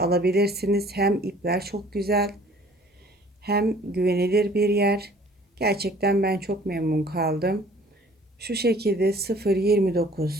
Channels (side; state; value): both; normal; correlation 0.53